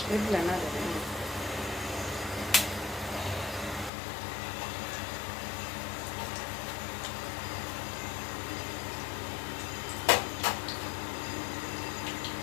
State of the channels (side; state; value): right; drops out; at 3.9 s